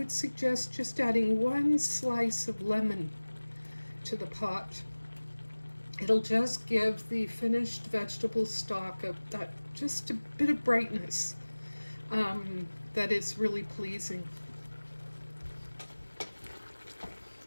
suggest just adding 1 slice of lemon to the pot. It'll just give the finished vegetable stock just a bit of brightness that is really pleasing.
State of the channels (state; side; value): inverted; both; correlation -1.00